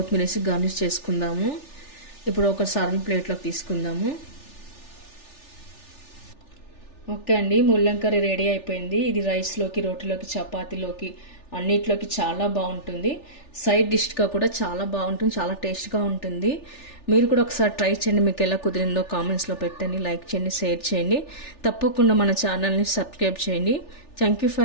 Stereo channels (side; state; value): right; late; 3.4 ms